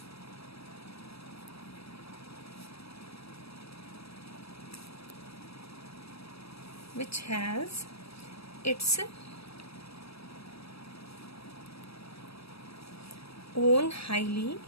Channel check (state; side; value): late; right; 0.78 ms